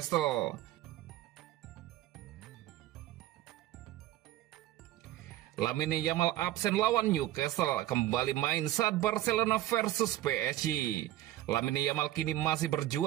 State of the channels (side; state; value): left; quieter; 14.5 dB